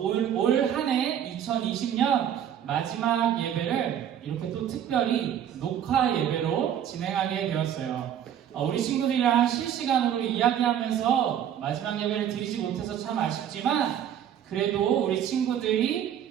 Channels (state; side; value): quieter; left; 9.7 dB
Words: 한 해 2020년 마지막 예배를 이렇게 또 특별히 녹화 예배로 진행하게 되었어요. 우리 친구들이랑 실시간으로 이야기하면서 마지막 예배를 드리지 못해서 참 아쉽지만 그래도 우리